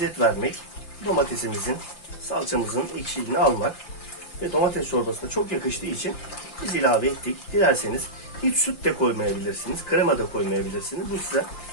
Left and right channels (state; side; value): late; right; 5.8 ms